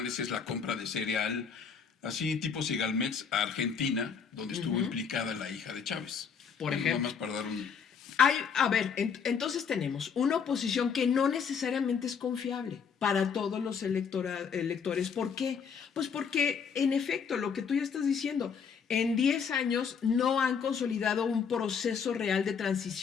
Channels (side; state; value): right; quieter; 6.5 dB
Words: es la compra de cereal, así tipo Segalmex, a Argentina, donde estuvo implicada la hija de Chávez. Por ejemplo. Nada más para dar un... A ver, entonces tenemos una oposición que no necesariamente es confiable para todos los electores. ¿Por qué? Pues porque, en efecto, lo que tú ya estás diciendo, en 10 años no han consolidado un proceso real de